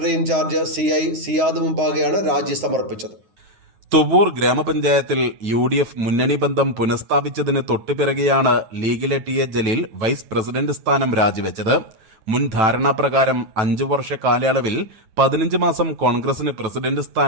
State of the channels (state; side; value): late; left; 9.1 ms